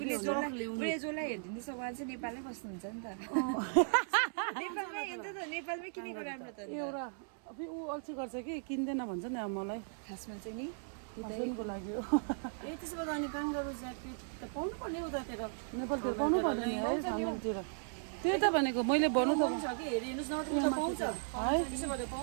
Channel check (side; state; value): left; silent; 53 dB below the other